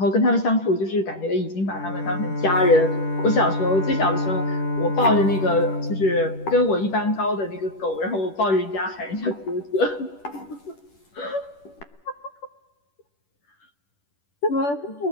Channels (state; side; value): late; right; 10 ms